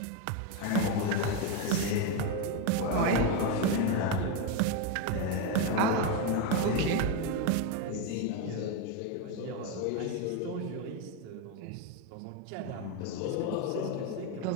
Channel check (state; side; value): different; both; correlation 0.03